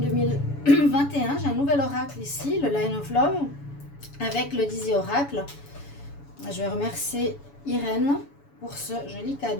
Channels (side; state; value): right; late; 7.1 ms